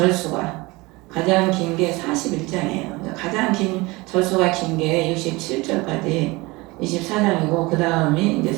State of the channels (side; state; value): left; quieter; 23.2 dB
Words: 가장 긴 게 41장이에요. 가장 긴 절수가 긴 게 67절까지 24장이고 그 다음이 이제